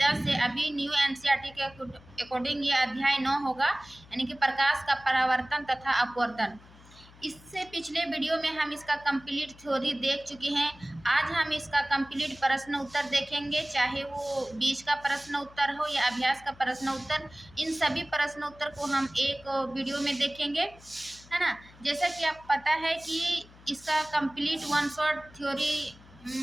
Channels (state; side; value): noise; left; hum, 23 dB below the sound